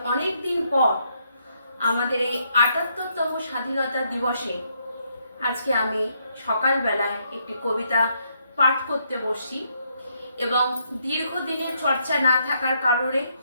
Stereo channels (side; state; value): both; inverted; correlation -0.75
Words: অনেক দিন পর আমাদের এই ৭৮তম স্বাধীনতা দিবসে আজকে আমি সকালবেলায় একটি কবিতা পাঠ করতে বসি। এবং দীর্ঘদিনের চর্চা না থাকার কারণে